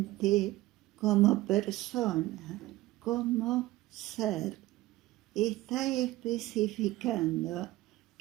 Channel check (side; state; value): left; quieter; 17.5 dB